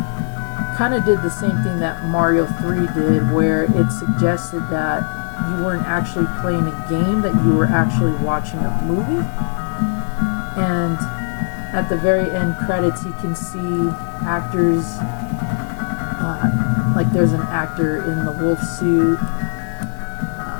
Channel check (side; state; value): right; silent; 63 dB below the other